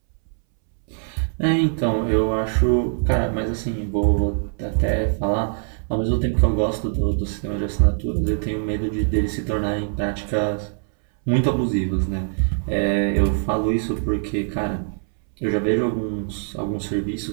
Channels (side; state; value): left; silent; 64 dB below the other